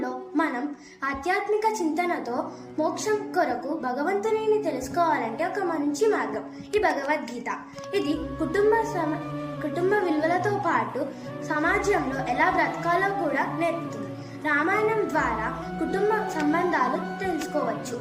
మనం ఆధ్యాత్మిక చింతనతో మోక్షం కొరకు భగవంతుని తెలుసుకోవాలంటే ఒక మంచి మార్గం ఈ భగవద్గీత. ఇది కుటుంబ విలువలతో పాటు సమాజంలో ఎలా బ్రతకాలో కూడా నేర్పుతుంది. రామాయణం ద్వారా కుటుంబ సంబంధాలు తెలుసుకోవచ్చు.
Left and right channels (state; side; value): identical; both; correlation 1.00